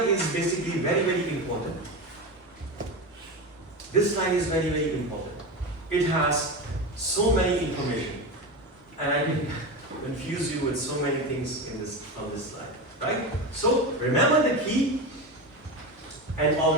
is basically very, very important. This slide is very, very important. It has so many information. And I can confuse you with so many things in this on this slide. Right? So remember the key. An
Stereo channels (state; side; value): normal; both; correlation 0.21